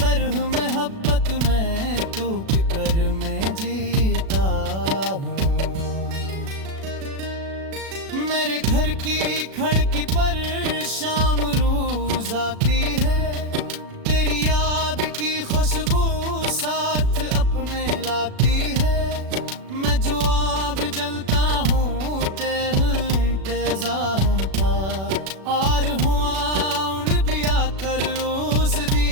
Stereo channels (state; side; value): late; left; 36 ms